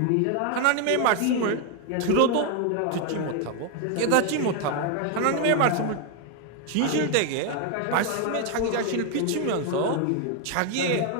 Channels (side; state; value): both; different; correlation 0.01